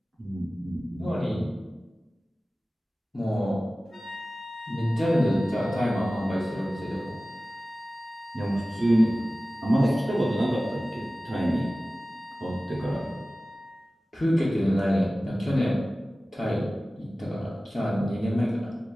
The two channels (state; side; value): normal; both; correlation 0.96